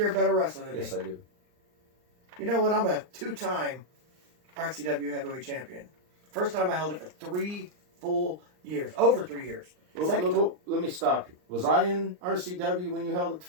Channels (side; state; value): left; late; 39 ms